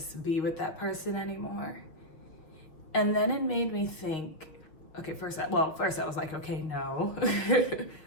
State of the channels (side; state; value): right; late; 6.2 ms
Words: be with that person anymore. And then it made me think, okay, first I was like, okay, no,